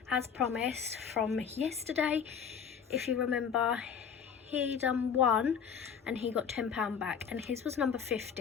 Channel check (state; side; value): quieter; right; 7.2 dB